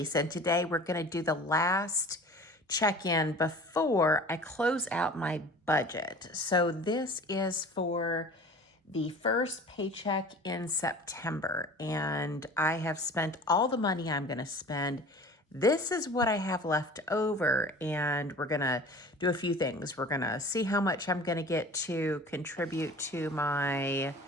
and today we're going to do the last check-in before I close out my budget. So this is for the first paycheck in September and I have spent all the money I'm going to spend. This is what I have left over and we're going to do a few things. We're going to see how much I'm going to get to contribute to my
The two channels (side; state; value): both; normal; correlation 0.42